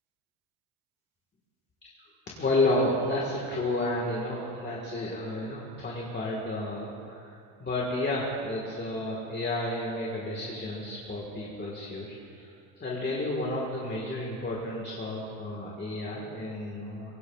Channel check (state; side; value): normal; both; correlation 0.28